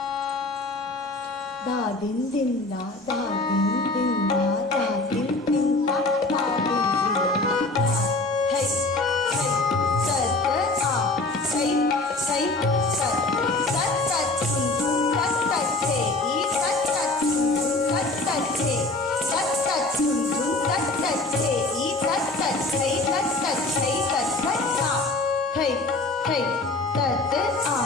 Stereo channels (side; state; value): right; quieter; 3.1 dB